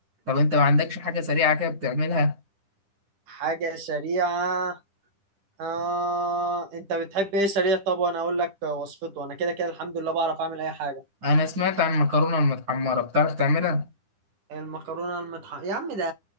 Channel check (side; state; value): left; late; 10 ms